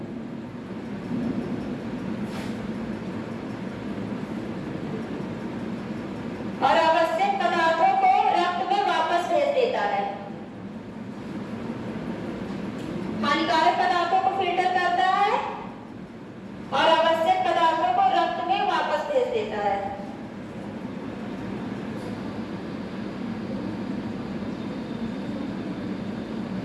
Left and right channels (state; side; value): identical; both; correlation 1.00